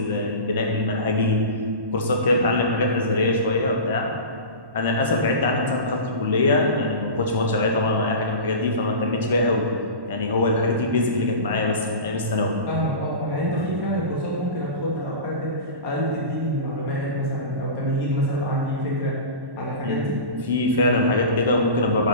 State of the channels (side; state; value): left; late; 1.1 ms